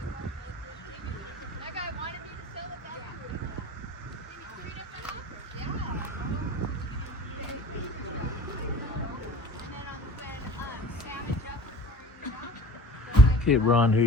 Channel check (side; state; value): both; normal; correlation 0.41